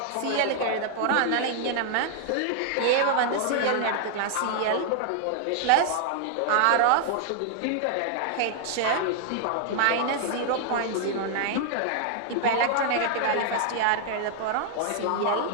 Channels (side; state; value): both; different; correlation 0.00